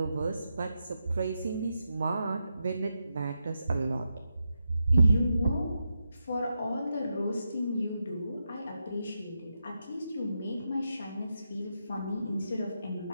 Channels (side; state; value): both; inverted; correlation -0.86